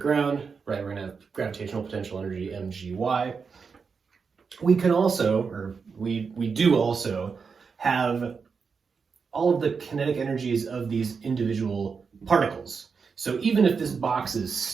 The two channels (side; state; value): left; quieter; 5.5 dB